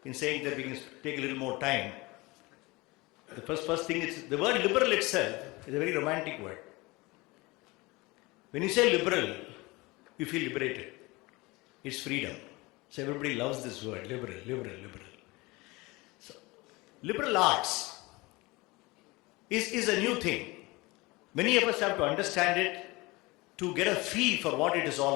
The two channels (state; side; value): quieter; right; 23.2 dB